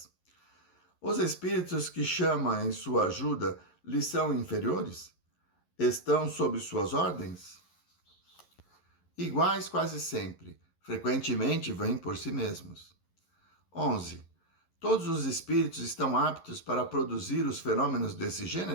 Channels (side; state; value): right; late; 11 ms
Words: Os espíritos que chama em sua ajuda lhe são inferiores? Estão sob suas ordens? Iguais quase sempre, frequentemente vêm por si mesmos. 11. Todos os espíritos estão aptos para produzir os fenômenos desse